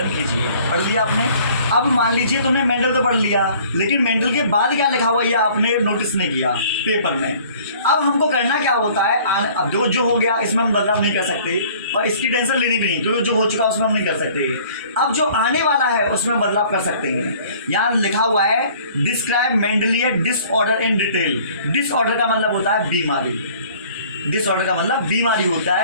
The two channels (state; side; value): inverted; both; correlation -0.53